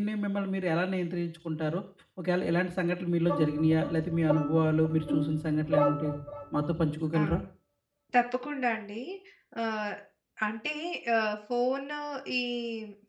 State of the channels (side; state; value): both; identical; correlation 1.00